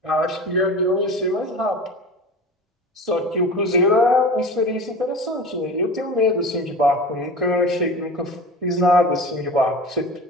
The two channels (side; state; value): both; normal; correlation 0.34